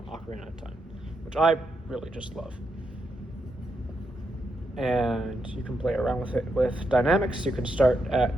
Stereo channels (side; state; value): both; normal; correlation 0.82